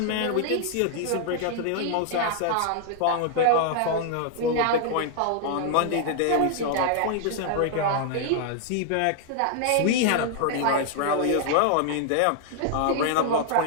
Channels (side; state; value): both; different; correlation 0.00